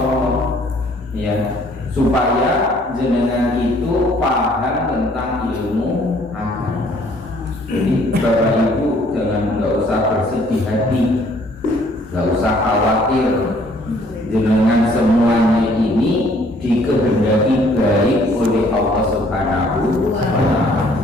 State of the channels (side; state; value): both; normal; correlation 0.60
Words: ya, supaya jenengan itu paham tentang ilmu agama. Jadi Bapak Ibu nggak usah bersedih hati, nggak usah khawatir, jenengan semuanya ini dikehendaki baik oleh Allah Subhanahu wa ta'ala.